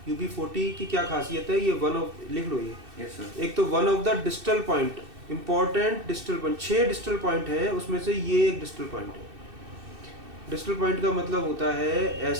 UB40 की क्या खासियत है, ये वन ऑफ, लिख लो ये। Yes sir. एक तो one of the distal point, important distal point, 6 distal point है, उसमें से ये एक डिस्टल पॉइंट है। डिस्टल पॉइंट का मतलब होता है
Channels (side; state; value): left; late; 2.6 ms